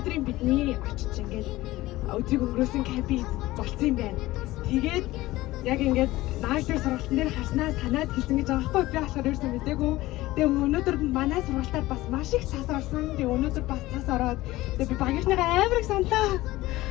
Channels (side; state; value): right; quieter; 17.9 dB